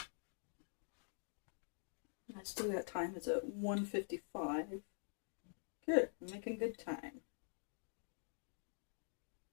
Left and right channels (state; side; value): silent; right; digital silence